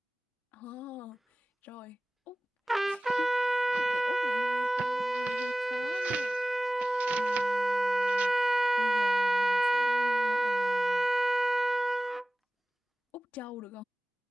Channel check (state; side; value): normal; both; correlation 0.98